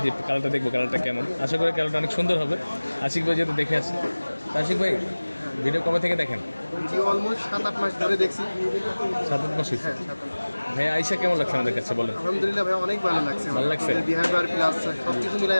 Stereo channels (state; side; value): inverted; both; correlation -1.00